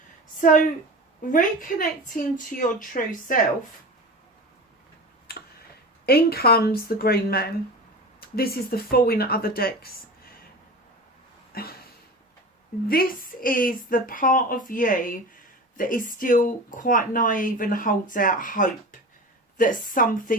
So, reconnecting to your true self, in comes the Green Man. This is the Fool in other decks. This is the part of you that is still quite naive and holds out hope that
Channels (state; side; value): normal; both; correlation 0.31